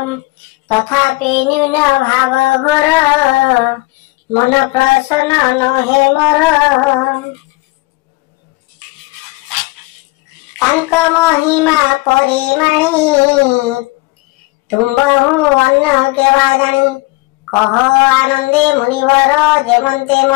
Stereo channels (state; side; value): quieter; right; 23.3 dB